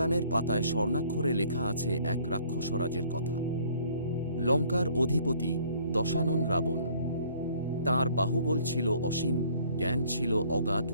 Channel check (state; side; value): inverted; both; correlation -0.58